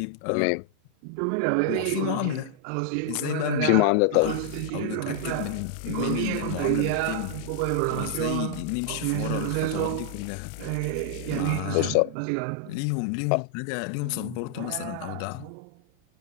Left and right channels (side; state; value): both; different; correlation -0.01